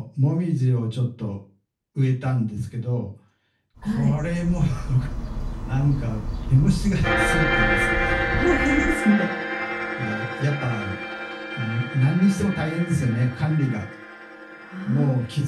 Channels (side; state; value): both; identical; correlation 1.00